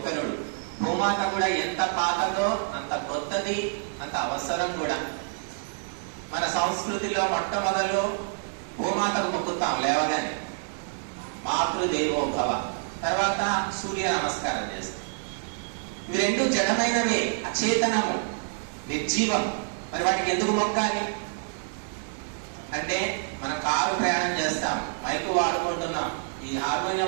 భూమాత కూడా ఎంత పాతదో అంత కొత్తది, అంత అవసరం కూడా. మన సంస్కృతిలో మొట్టమొదలు భూమాతకు మొక్కుతాం లేవగానే, మాతృదేవోభవ. తర్వాత సూర్య నమస్కారం చేస్తాం. ఇవి రెండు జడమైనవే, అచేతనము, నిర్జీవం. మరి వాటికి ఎందుకు మొక్కాలి అంటే, మనం కారు ప్రయాణం చేస్తాం, మైకు వాడుకుంటున్నాం, ఈ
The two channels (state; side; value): silent; left; digital silence